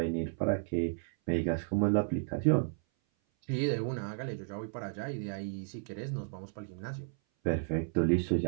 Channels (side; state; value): left; silent; 56 dB below the other